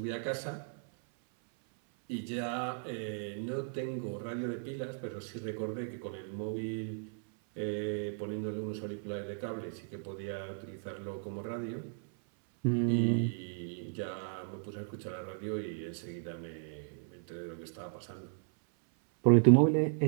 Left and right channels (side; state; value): left; silent; 54 dB below the other